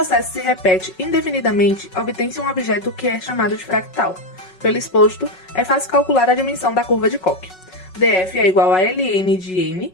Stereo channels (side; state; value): right; late; 5.4 ms